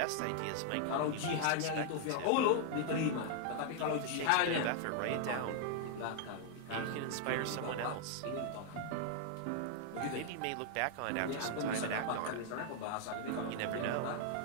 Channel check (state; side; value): different; both; correlation 0.00